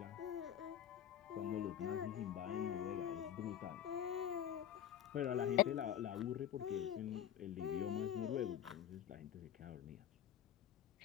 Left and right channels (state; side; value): quieter; right; 10.2 dB